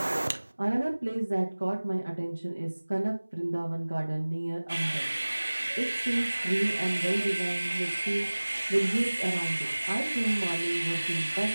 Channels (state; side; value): inverted; both; correlation -1.00